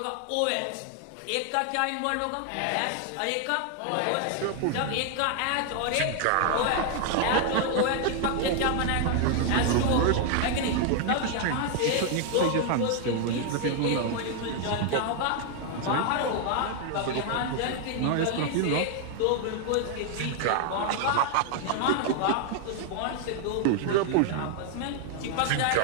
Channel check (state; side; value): different; both; correlation 0.00